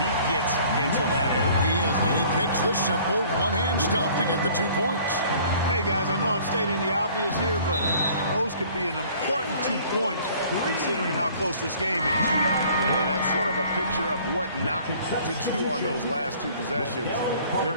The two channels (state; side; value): inverted; both; correlation -0.53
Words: he gets into that area. He is, and he picks the simple one-hand stuff to get the 2 points. Hey, guys, I know I'm stating the obvious here, but those could be an important 2 points considering how close this game is. And that's sort of a picture of what not to do on those last 2 possessions. They're